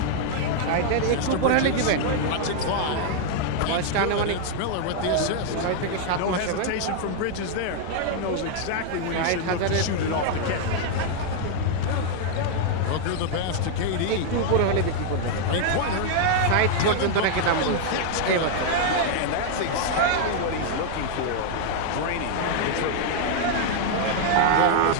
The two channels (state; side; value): different; both; correlation 0.00